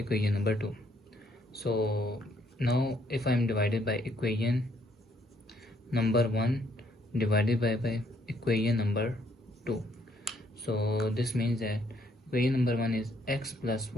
number 2. So now if I am divided by equation number 1 divided by equation number 2, so this means that equation number 1 is x plus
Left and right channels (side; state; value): both; normal; correlation 0.69